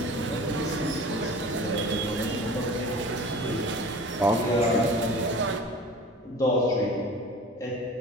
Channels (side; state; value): both; normal; correlation 0.40